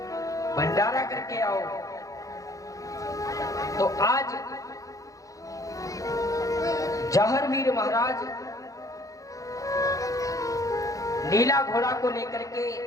भंडारा करके आओ। तो आज जहरवीर महाराज नीला घोड़ा को लेकर के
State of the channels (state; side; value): late; right; 0.16 ms